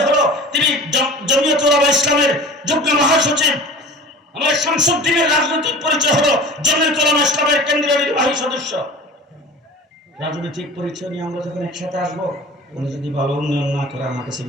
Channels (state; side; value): normal; both; correlation 0.39